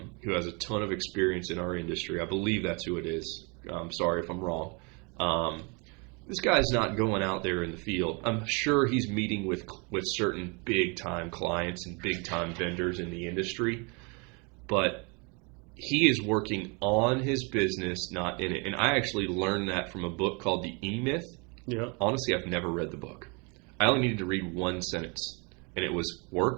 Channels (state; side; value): quieter; left; 31.8 dB